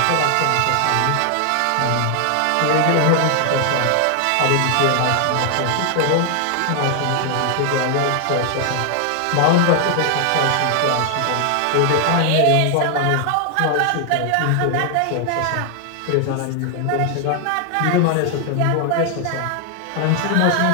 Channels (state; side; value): different; both; correlation 0.00